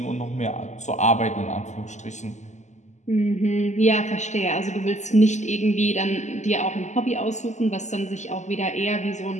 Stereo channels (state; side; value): late; right; 0.34 ms